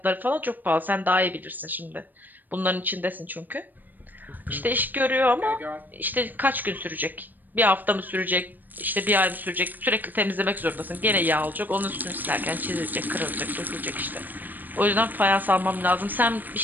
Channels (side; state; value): left; late; 0.088 ms